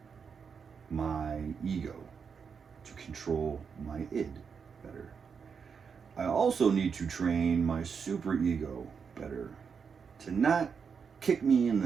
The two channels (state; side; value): quieter; left; 6.2 dB